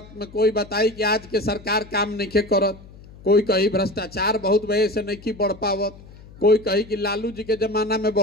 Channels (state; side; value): noise; left; hum, 20 dB below the sound